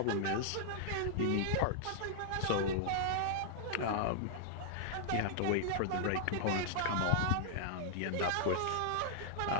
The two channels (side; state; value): both; different; correlation -0.01